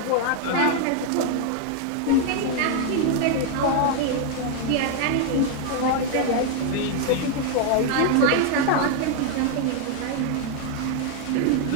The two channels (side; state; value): both; different; correlation 0.00